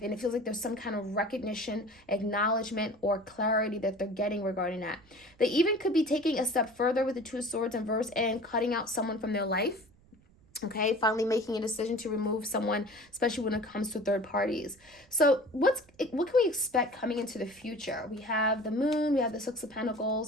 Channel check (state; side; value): noise; right; rumble, 29 dB below the sound